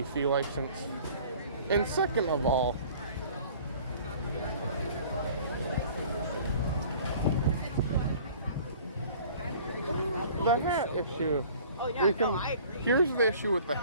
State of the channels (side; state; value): both; inverted; correlation -0.49